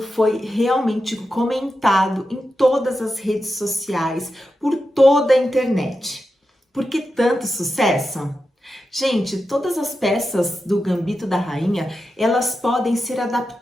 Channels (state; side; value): normal; both; correlation 0.89